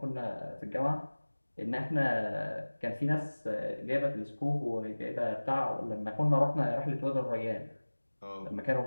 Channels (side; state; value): both; inverted; correlation -1.00